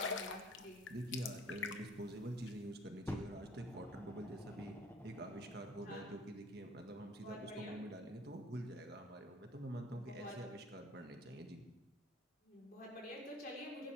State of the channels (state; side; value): normal; both; correlation 0.52